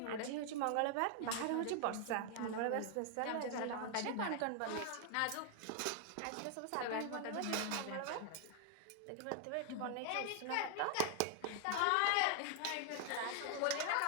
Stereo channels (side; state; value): both; different; correlation 0.00